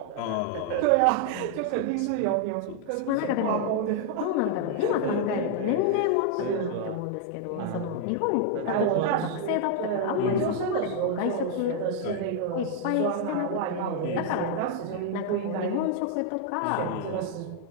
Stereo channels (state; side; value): different; both; correlation 0.00